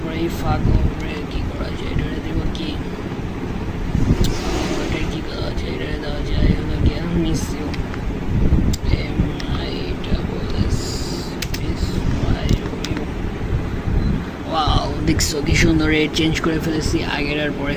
এই ফাঁক উপরে কী করা যায়, এটারে দেব কি, এটা কী দেওয়া যায়, এটারে দেওয়া যায় হলো কি মিস ইউ MISSYOU। ওয়াও, দেখছো কি সুন্দর রেট চেঞ্জ করে ফেলেছি আগের আর পরে।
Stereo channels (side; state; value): both; identical; correlation 1.00